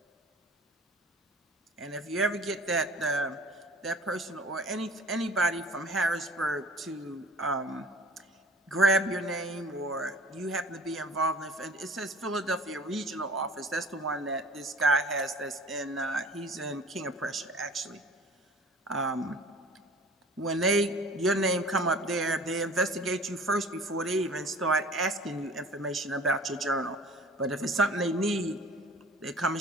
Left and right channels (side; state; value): both; normal; correlation 0.45